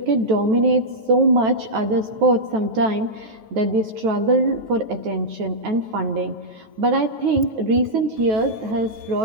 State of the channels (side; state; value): left; late; 9.3 ms